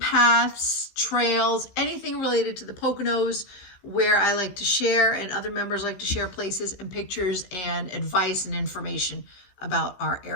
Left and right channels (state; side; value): late; right; 15 ms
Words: trails, anything related to the Poconos, where I like to share and other members like to share places and pictures and advice and information about our